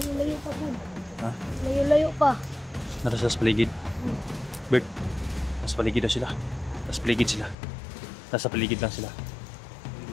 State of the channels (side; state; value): right; drops out; at 7.6 s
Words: pa po. Ha? Layo-layo pa. Nasa paligid. Bert, nasa paligid na sila. Nasa paligid sila. Nasa paligid lang sila.